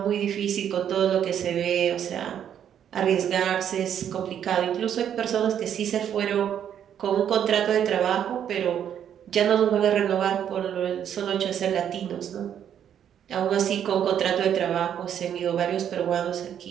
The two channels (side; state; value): left; quieter; 9.3 dB